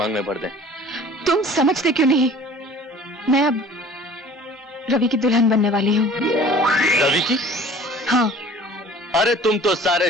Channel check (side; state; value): both; normal; correlation 0.47